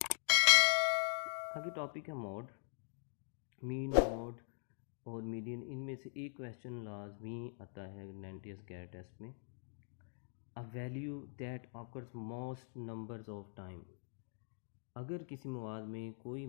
आगे टॉपिक है मोड। मीन, मोड और मीडियन, इनमें से एक क्वेश्चन लाजमी आता है NTS गैर टेस्ट में। A value that occurs most numbers of time. अगर किसी मवाद में कोई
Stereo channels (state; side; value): silent; right; digital silence